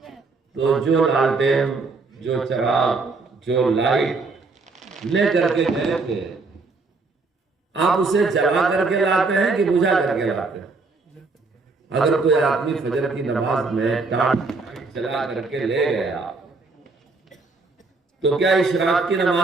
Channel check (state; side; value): quieter; left; 3.9 dB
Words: تو جو لالٹین، جو چراغ، جو لائٹ لے کر کے گئے تھے، آپ اسے جلا کر کے لاتے ہیں کہ بجھا کر کے لاتے ہیں؟ اگر کوئی آدمی فجر کی نماز میں ٹارچ جلا کر کے لے گیا تو کیا اشراق کی